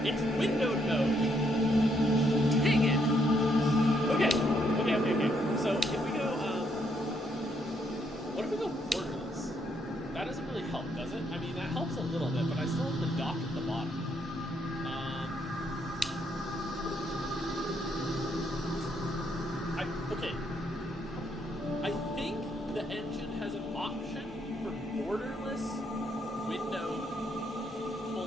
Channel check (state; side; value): normal; both; correlation 0.73